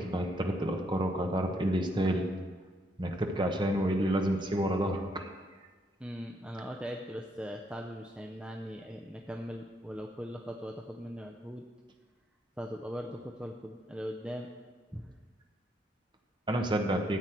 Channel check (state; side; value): normal; both; correlation 0.74